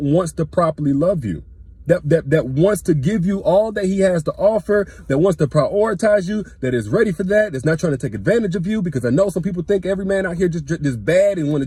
wants to properly love you, that wants to give you all that he has to offer, that wants to prioritize you, that is ready for that's not trying to take advantage of you. Because I know some people think every man out here just bad and want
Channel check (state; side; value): identical; both; correlation 1.00